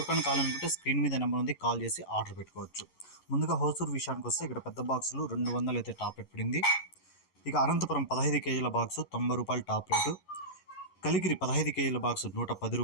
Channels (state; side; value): late; right; 11 ms